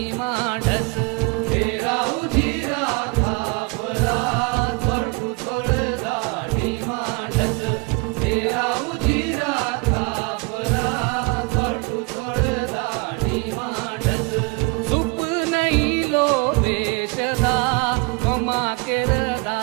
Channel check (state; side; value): quieter; left; 27.3 dB